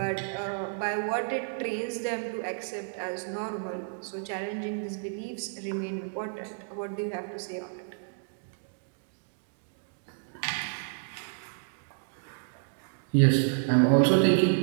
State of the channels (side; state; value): left; silent; digital silence